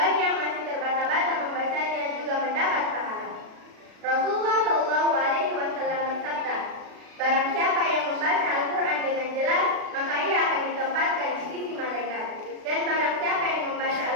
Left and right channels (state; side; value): late; left; 36 ms